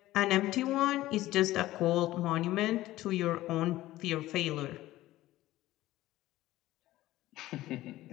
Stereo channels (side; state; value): right; quieter; 16.1 dB